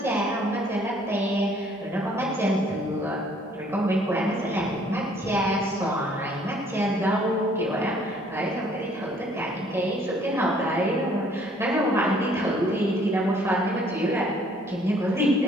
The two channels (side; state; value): both; normal; correlation 0.61